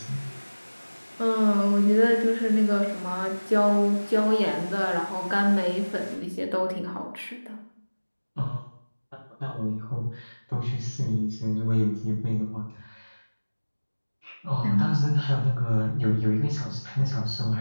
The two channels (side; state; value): both; inverted; correlation -1.00